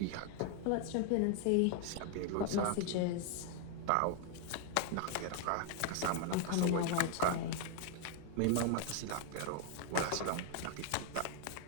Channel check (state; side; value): different; both; correlation 0.00